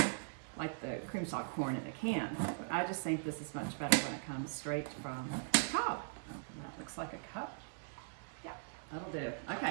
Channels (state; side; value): silent; left; digital silence